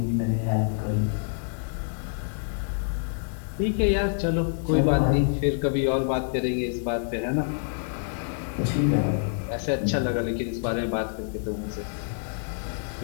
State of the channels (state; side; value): silent; right; 60 dB below the other